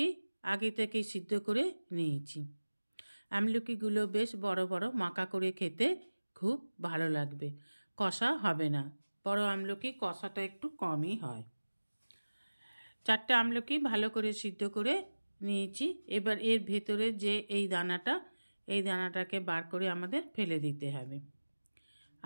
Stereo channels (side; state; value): both; inverted; correlation -1.00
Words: আগে থেকেই সিদ্ধ করে নিয়েছি। আমলকিগুলো বেশ বড় বড় মাখা করে খেতে খুব ভালো লাগবে, কষা হবে না। বড় আমলকি কষাটা একটু কমই হয়। 4টে আমলকি ভালো করে সিদ্ধ করে নিয়েছি। এবার এর ভেতরে যে এই দানাটাকে বার করে আমাদের ফেলে দিতে হবে।